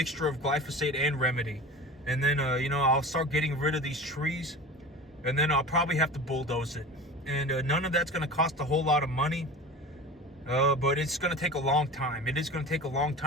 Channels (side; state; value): both; normal; correlation 0.34